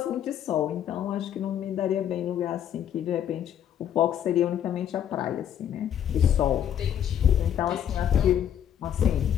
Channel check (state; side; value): quieter; right; 9.9 dB